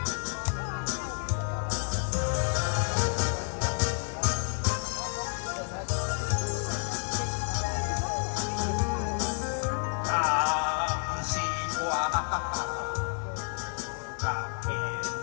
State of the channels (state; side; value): silent; right; 58 dB below the other